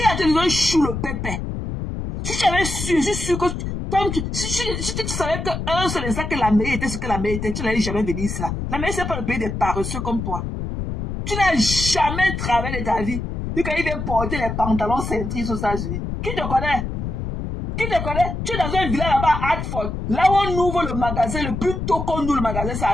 te donné chou le pépé. Si tu avais su, je suis sûr que si tu savais qu'un seul instant que l'Amérique était ce que l'Amérique était, tu n'allais jamais venir ici là. L'Amérique, c'est pas le pays des paresseux comme toi. Tu n'as jamais travaillé de ta vie. Et quand il vient porter les pantalons cintrés aux États-Unis. Qui te connaît? Qui te connaît? Tu es dans un village là-bas à Hartford. Là où on ouvre le magasin, le plus tôt qu'on ouvre le magasin, c'est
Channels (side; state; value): left; noise; rumble, 4 dB below the sound